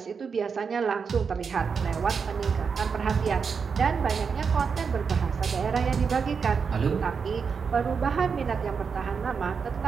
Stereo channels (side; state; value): left; quieter; 5.8 dB